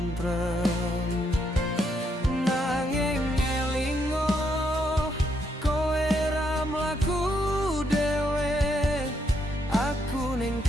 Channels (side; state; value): both; normal; correlation 0.76